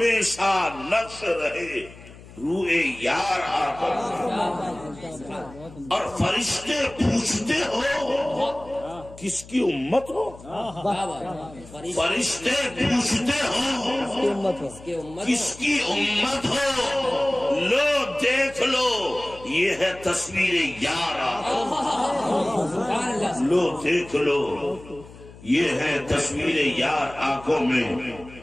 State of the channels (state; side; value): noise; left; hum, 19 dB below the sound